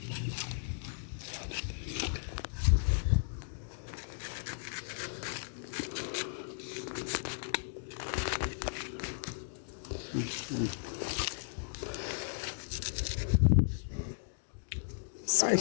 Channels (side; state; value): right; silent; digital silence